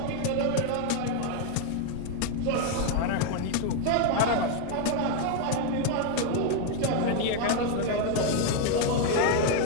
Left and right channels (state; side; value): different; both; correlation 0.01